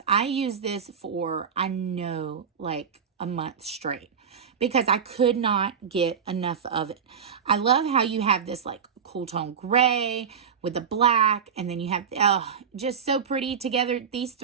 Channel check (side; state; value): left; quieter; 7.1 dB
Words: I use this for, I know, like a month straight because I could not get enough of it. I love how you have this like cool tone gray with the black, and then you have, just so pretty together. These